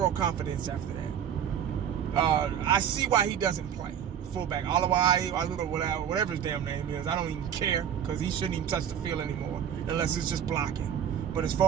confidence after that. I see why he doesn't play fullback. Whatever his damn name is, I don't even care because he shouldn't even touch the field anymore unless it's just blocking. But as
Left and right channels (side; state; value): left; quieter; 9.0 dB